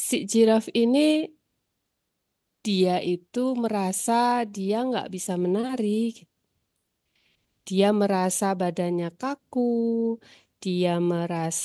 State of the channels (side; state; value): both; identical; correlation 1.00